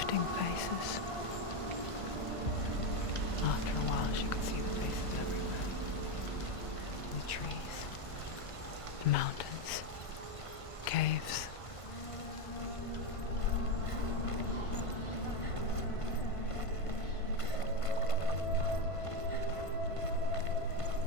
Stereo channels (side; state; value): right; late; 1.5 ms